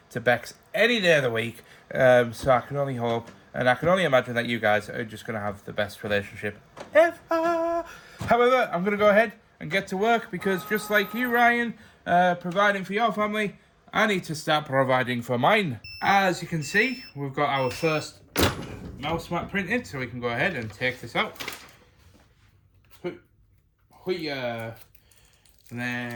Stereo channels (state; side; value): identical; both; correlation 1.00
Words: to Bex any day of the week. So I can only hope, and I can only imagine that you guys are just going to have the best relationship ever. However, I'm going to go ahead and get to work because just like you, Ryan, providing for your family, I need to start providing for mine. As you can see, we've got our first mouse mat printed, so we can go ahead and take this out. And